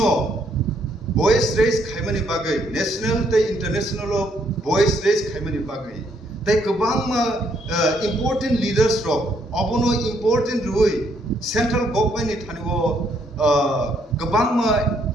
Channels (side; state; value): both; normal; correlation 0.71